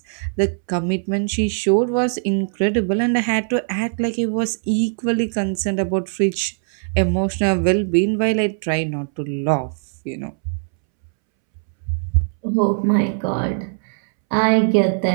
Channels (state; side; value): silent; left; 65 dB below the other